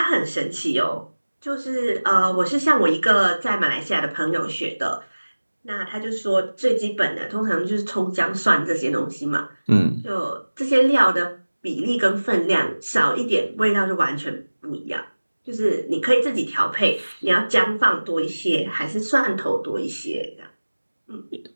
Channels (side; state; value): both; inverted; correlation -1.00